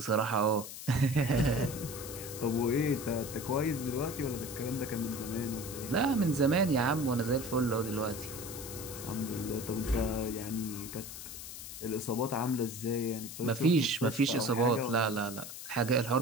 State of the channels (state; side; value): noise; left; hiss, 10 dB below the sound